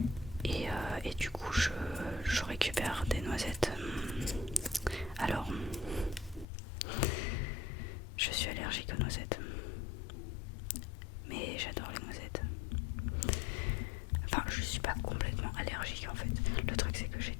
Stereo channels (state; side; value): drops out; right; at 6.5 s